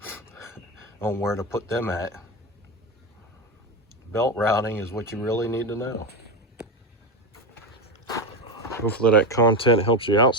on where to put them at? Belt routing is what you really need to know. Hopefully that content helps you out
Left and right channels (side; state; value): both; normal; correlation 0.16